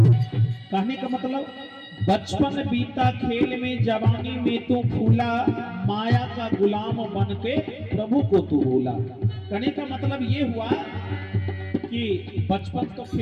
कहने का मतलब, बचपन बीता खेल में जवानी में तू फूला, माया का गुलाम बन के प्रभु को तू भूला। कहने का मतलब ये हुआ कि बचपन तो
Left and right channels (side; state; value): both; identical; correlation 1.00